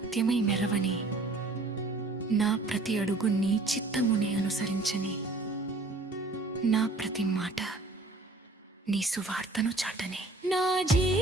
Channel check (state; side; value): quieter; left; 3.1 dB